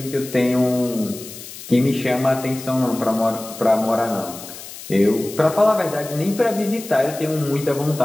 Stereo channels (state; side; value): noise; left; hiss, 14 dB below the sound